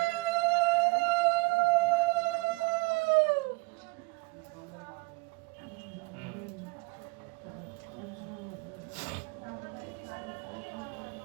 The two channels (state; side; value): quieter; left; 25.2 dB